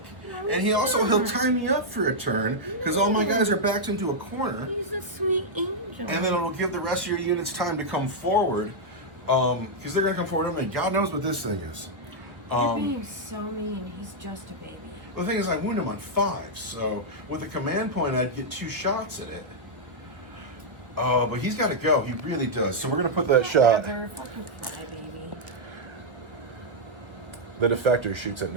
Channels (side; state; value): left; late; 1.4 ms